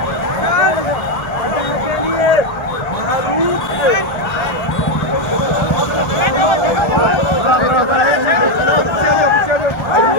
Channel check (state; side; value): late; right; 1.3 ms